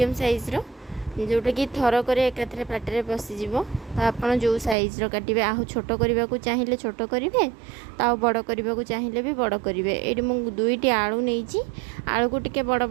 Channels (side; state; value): left; drops out; at 4.8 s